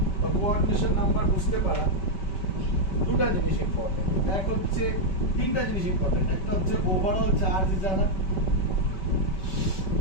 বা কোঅর্ডিনেশন নাম্বার বুঝতে পারা দুটো জিনিস ইম্পর্টেন্ট এক হচ্ছে তিনটা জিনিস ইম্পর্টেন্ট একটা হচ্ছে ওভারঅল চার্জ জানা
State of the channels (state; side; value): late; right; 5.2 ms